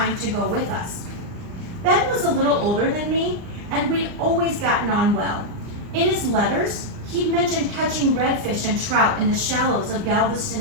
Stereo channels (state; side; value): late; left; 39 ms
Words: to go with us. Ben was a little older than me, and we'd always gotten on well. In his letters, he'd mentioned catching redfish and trout in the shallows of Galveston